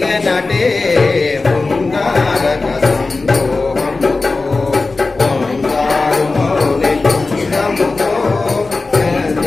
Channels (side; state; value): right; quieter; 3.6 dB